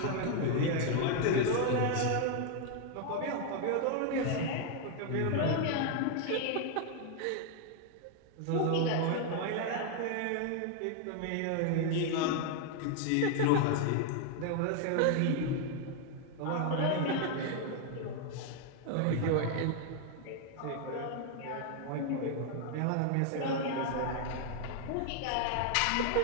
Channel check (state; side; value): different; both; correlation 0.00